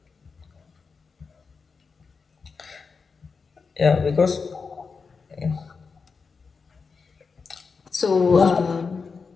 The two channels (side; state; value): right; quieter; 5.0 dB